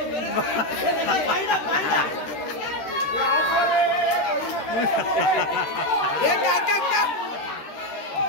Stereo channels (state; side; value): late; right; 13 ms